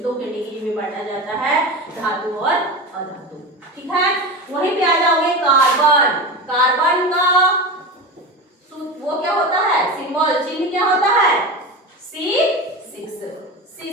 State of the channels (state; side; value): normal; both; correlation 0.25